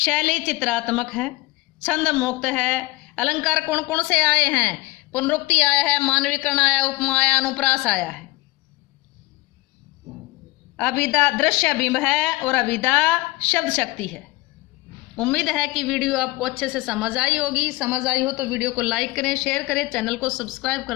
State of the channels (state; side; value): quieter; right; 20.9 dB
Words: चित्रात्मक है, छंद मुक्त है, अलंकार कौन कौन से आए हैं, पुनरुक्ति आया है, मानवीकरण आया, उपमा आया, अनुप्रास आया है, अभिधा दृश्य बिंब है और अभिधा शब्द शक्ति है। उम्मीद है कि वीडियो आपको अच्छे से समझ आई होगी। समझ आई हो तो वीडियो को लाइक करें, शेयर करें, चैनल को सब्सक्राइब